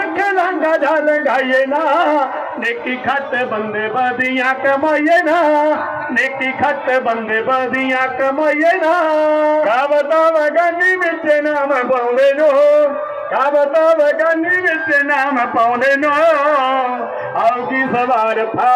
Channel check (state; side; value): identical; both; correlation 1.00